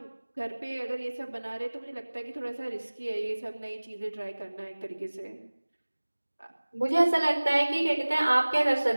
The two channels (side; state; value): both; inverted; correlation -1.00